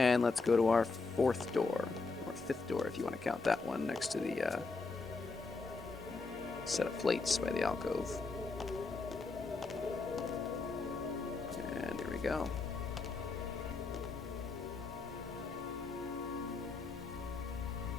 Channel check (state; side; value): quieter; right; 4.1 dB